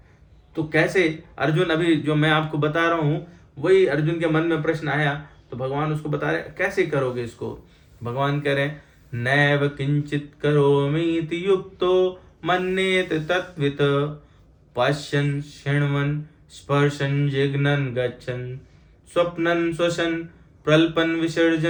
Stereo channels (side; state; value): both; identical; correlation 1.00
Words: तो कैसे अर्जुन, अभी जो मैं आपको बता रहा हूं वही अर्जुन के मन में प्रश्न आया, तो भगवान उसको बता रहे कैसे करोगे इसको। भगवान कह रहे हैं नैव किंचित करोमीति युक्तो मन्येत तत्वित पश्यन् शृण्वन् स्पर्शन् जिघ्नन् गच्छन् स्वप्नन् श्वसन् प्रल्पन्